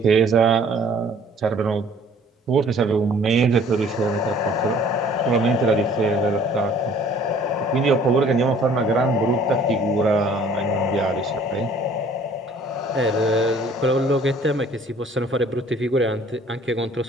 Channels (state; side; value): normal; both; correlation 0.55